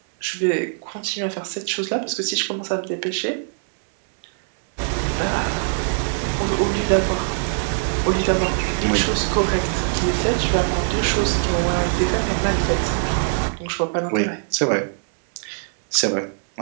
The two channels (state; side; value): silent; left; 64 dB below the other